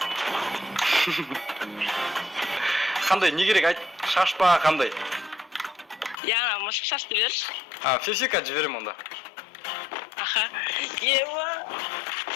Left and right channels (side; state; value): right; drops out; at 6.2 s